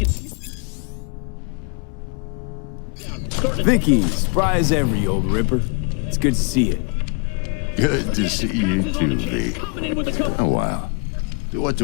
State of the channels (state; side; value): quieter; right; 35.2 dB